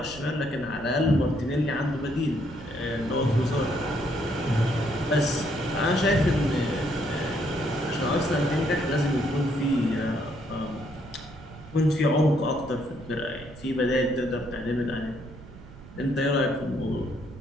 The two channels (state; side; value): noise; right; rumble, 17 dB below the sound